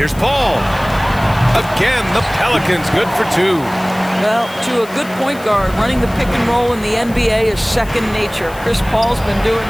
Paul. Again, the Pelicans good for 2. Well, to a good point guard, running the pick and roll in the NBA is second nature. Chris Paul's been doing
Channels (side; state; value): left; noise; hiss, 20 dB below the sound